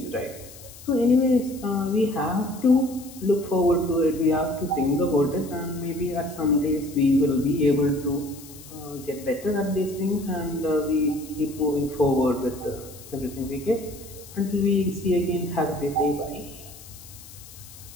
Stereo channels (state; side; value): noise; left; hiss, 18 dB below the sound